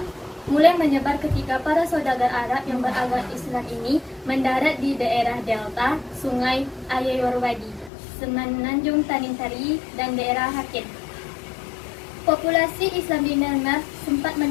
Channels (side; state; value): right; drops out; at 7.9 s